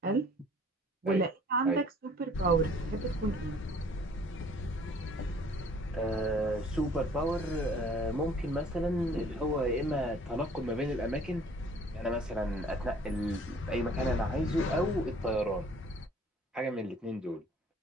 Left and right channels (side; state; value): both; normal; correlation 0.54